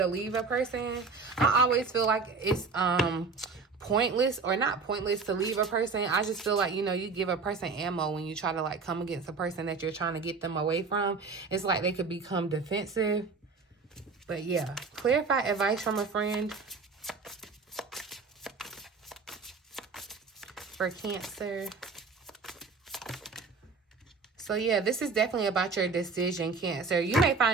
leave a person? I always feel like it's pointless, or not pointless to leave a person. I just feel like, you know, you give a person ammo when you try to like come against a person that you're trying to get them away from. It's like they could become defensive. But yeah, clarify advice from a friend for Cancer. So yeah, this is definitely about your decision, Cancer. You may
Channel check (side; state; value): left; quieter; 4.6 dB